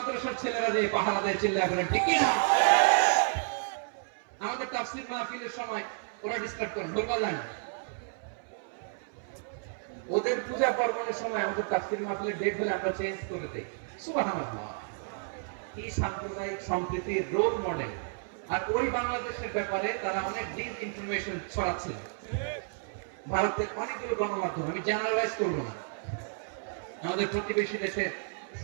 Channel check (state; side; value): silent; left; 57 dB below the other